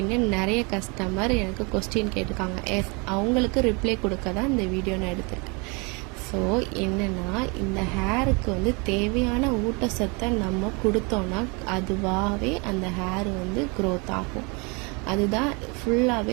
நிறைய கஸ்டமர் எனக்கு கொஸ்டின் கேட்டிருக்காங்க. அவங்களுக்கு ரிப்ளை கொடுக்க தான் இந்த வீடியோ நான் எடுத்திருக்கேன். ஸோ என்னென்னா, இந்த ஹேருக்கு தேவையான ஊட்டச்சத்தை நம்ம கொடுத்தோன்னா அதுவாகவே அந்த ஹேர் க்ரோத் ஆகும். அதுதான்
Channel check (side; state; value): left; quieter; 30.3 dB